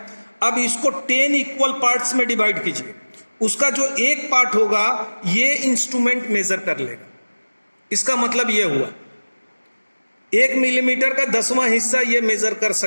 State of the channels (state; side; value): inverted; both; correlation -1.00